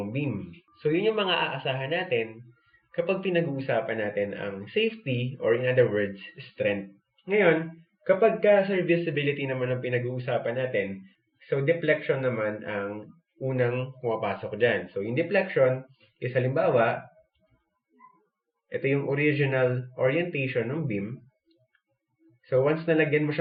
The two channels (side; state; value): both; identical; correlation 1.00